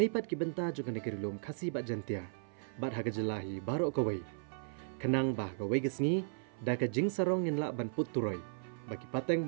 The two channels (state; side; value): silent; left; 54 dB below the other